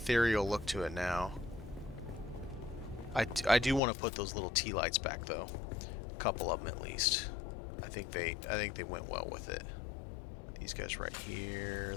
look to it now. I do want to put those little tea lights back though, a couple of them at least. I think they went well with it. These guys right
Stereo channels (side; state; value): right; drops out; at 3.8 s